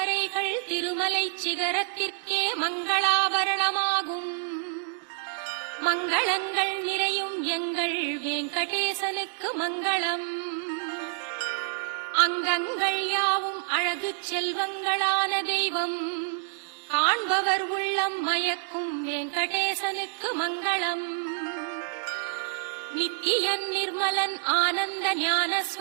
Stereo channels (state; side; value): silent; left; digital silence